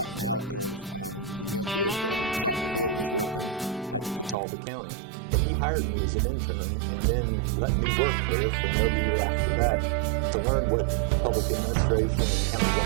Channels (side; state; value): left; drops out; at 4.4 s